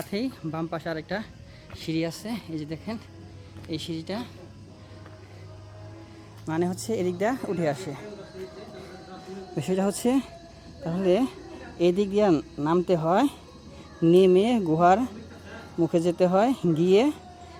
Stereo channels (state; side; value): identical; both; correlation 1.00